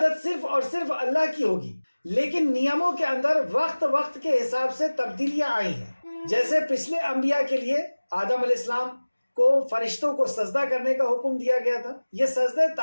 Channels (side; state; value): both; inverted; correlation -1.00